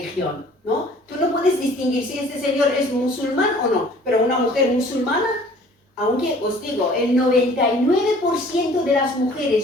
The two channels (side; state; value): both; normal; correlation 0.52